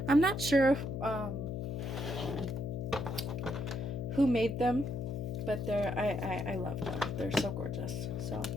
I'm not sure who made them, but I love them. They're so gorgeous. So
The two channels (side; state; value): left; noise; hum, 3 dB below the sound